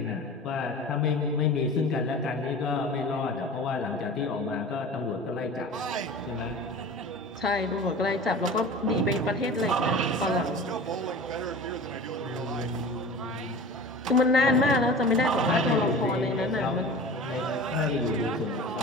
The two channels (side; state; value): both; normal; correlation 0.37